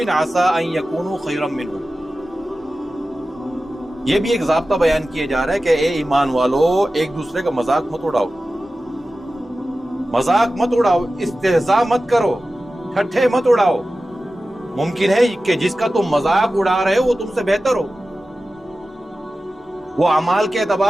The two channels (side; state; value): both; normal; correlation 0.95